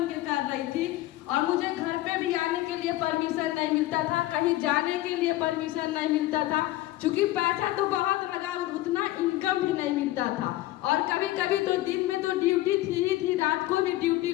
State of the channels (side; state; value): right; quieter; 16.4 dB